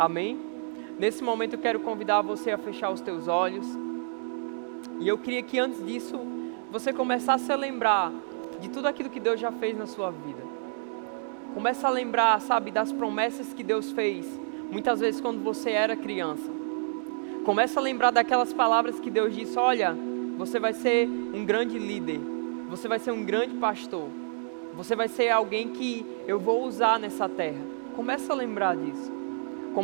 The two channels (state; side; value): silent; left; digital silence